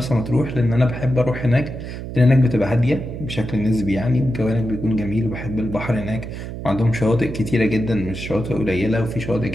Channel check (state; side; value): noise; right; hum, 8 dB below the sound